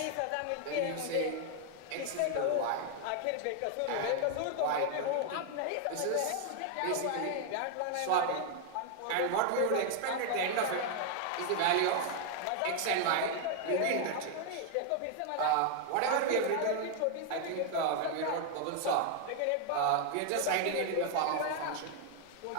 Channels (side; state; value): both; different; correlation 0.00